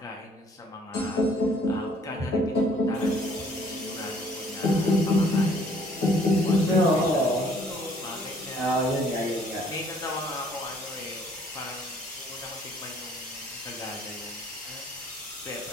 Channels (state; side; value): normal; both; correlation 0.60